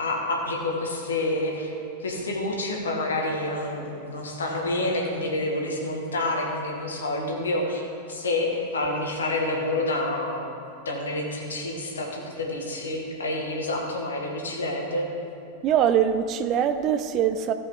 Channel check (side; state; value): both; normal; correlation -0.12